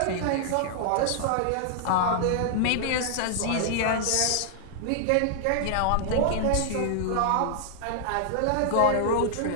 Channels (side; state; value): both; different; correlation -0.01